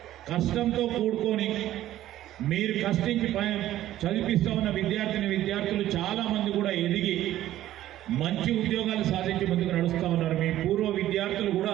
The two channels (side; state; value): left; quieter; 13.6 dB